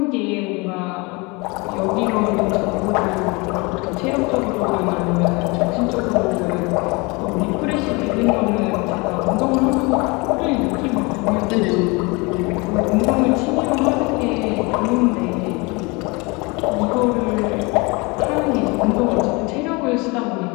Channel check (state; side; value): quieter; right; 27.2 dB